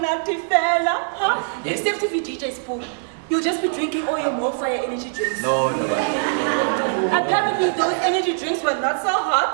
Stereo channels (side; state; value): left; silent; digital silence